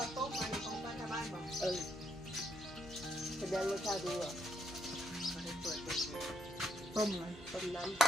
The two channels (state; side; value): normal; both; correlation 0.75